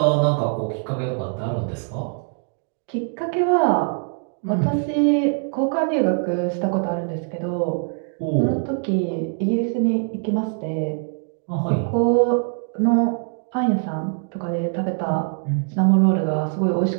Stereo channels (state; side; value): silent; left; 56 dB below the other